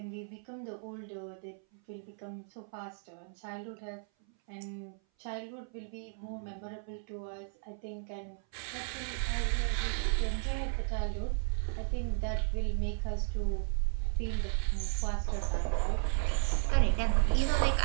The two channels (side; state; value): left; silent; 55 dB below the other